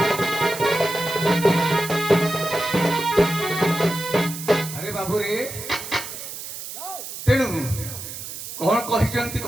আরে বাবুরে তেণু কଣ କହିଛନ୍ତି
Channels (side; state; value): right; noise; hiss, 9 dB below the sound